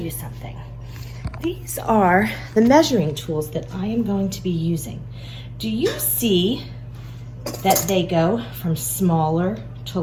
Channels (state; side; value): identical; both; correlation 1.00